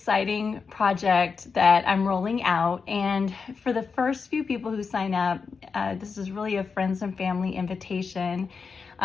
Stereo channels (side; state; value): right; quieter; 5.2 dB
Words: project that I'm rolling out, and for the first few people who sign up, this is really a friends and family invitation,